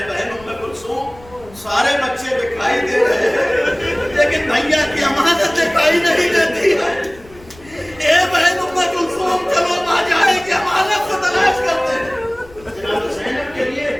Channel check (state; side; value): noise; left; rumble, 23 dB below the sound